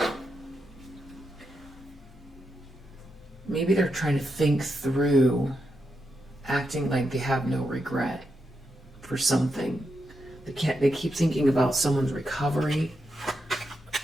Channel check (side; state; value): both; normal; correlation 0.84